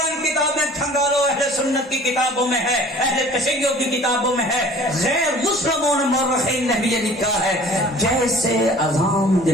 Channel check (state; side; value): normal; both; correlation 0.48